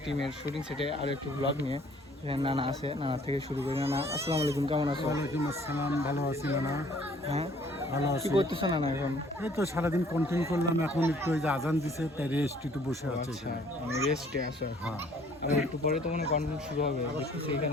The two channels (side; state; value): both; normal; correlation 0.58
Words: টিমের শুটিং সেটে আরও একটু ব্লগ নিয়ে। এখানে নানা আছে, নানা থেকে শুরু করি। নানা, আসসালামু আলাইকুম, কেমন আছো? ওয়ালাইকুম আসসালাম, ভালো আছি নানা। হ্যাঁ, ভালো কি আছি। করতেছো নানা এখন? এই তো সারাদিন কন্টেন্ট করলাম, এখন একটু ওই যে আজান দিছে তাই রেস্ট একটু বসে আছে আচ্ছা, এখানে। আমি রেস্টে আছো। হ্যাঁ, আর একটু পরে তো মনে কন্টেন্ট শুরু হবে, দেখতেছি